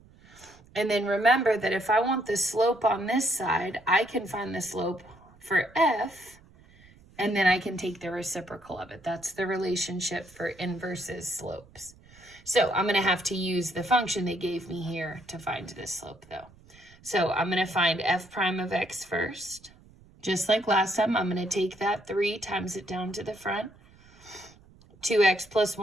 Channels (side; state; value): right; noise; rumble, 26 dB below the sound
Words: And then remember that if I want the slope on this side, I can find the slope for f, and then I can take the reciprocal of it. That's the relationship for inverses slopes. So I'm going to have to use the function they gave me here to find this slope, though. So I'm going to find f prime of x first. Just like last time, I'm going to take that 3 times it down to the front. 2x plus